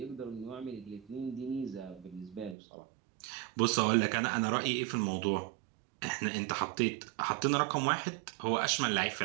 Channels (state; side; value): drops out; left; at 2.6 s